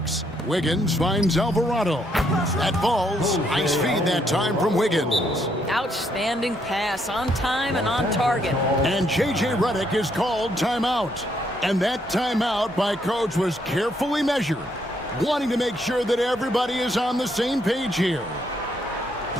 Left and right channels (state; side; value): normal; both; correlation 0.73